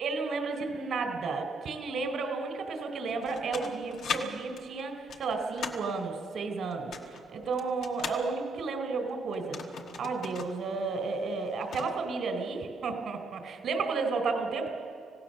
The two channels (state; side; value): quieter; left; 3.2 dB